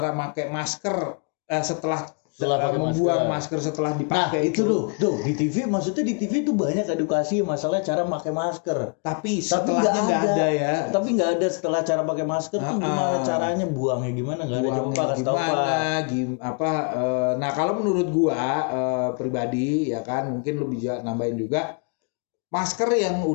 pakai masker setelah Setelah pakai membuang masker setelah Nah, dipakai itu tuh di TV, maksudnya di TV tuh banyak edukasi masalah cara pakai masker. Tapi setelahnya nggak ada ya. Tapi nggak ada setelah cara pakai masker tuh gimana caranya buangnya gimana, nggak ada. Buangnya Coba kasih tahu, Pak. nah kalau menurut gua pribadi ya kan, mungkin lu bisa nambahin juga, masker yang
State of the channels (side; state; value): right; quieter; 36.4 dB